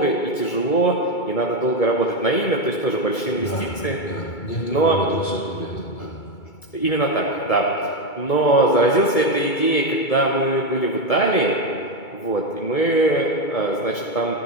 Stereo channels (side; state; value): right; late; 2.3 ms